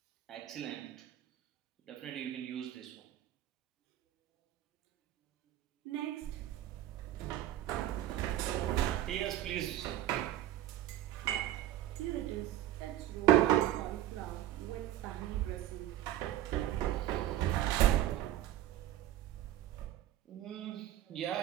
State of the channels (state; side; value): quieter; left; 13.1 dB